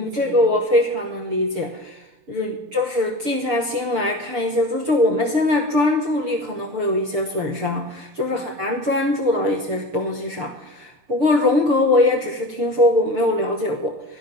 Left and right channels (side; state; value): left; late; 6.8 ms